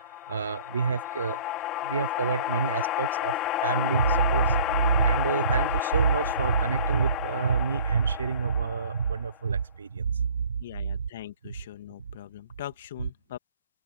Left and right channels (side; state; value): both; inverted; correlation -0.51